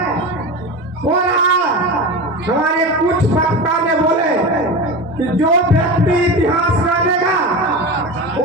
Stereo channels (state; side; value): normal; both; correlation 0.26